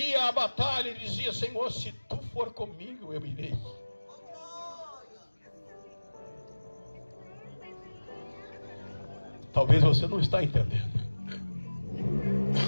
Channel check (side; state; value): both; inverted; correlation -1.00